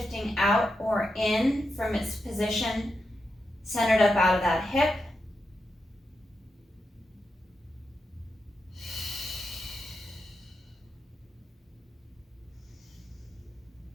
out or in from its position, centered up out of that hip.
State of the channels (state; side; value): normal; both; correlation 0.87